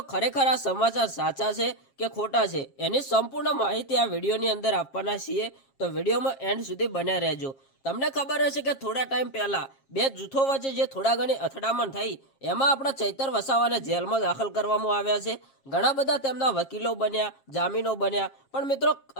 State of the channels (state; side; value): late; right; 7.4 ms